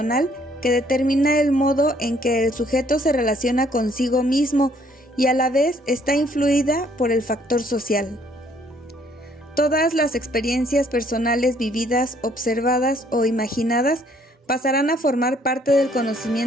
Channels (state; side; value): normal; both; correlation 0.64